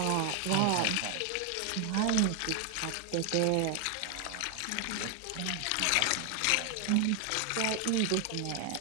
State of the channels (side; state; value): both; different; correlation 0.00